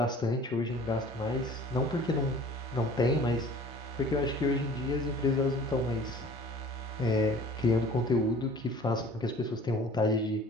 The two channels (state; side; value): normal; both; correlation 0.47